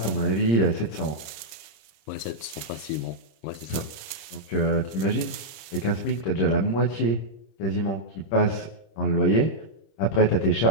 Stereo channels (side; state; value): right; late; 26 ms